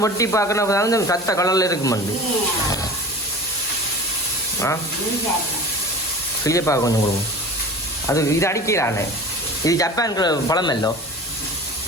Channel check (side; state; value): both; normal; correlation 0.37